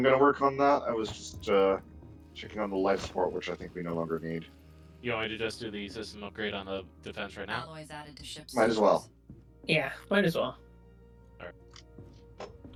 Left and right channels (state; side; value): identical; both; correlation 1.00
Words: gonna work on that. I was just checking on the life support, which I think we no longer need. you want me to just do the system upgrade on the defense right now? Alloys added to ship. Might as well. Yeah, might as well.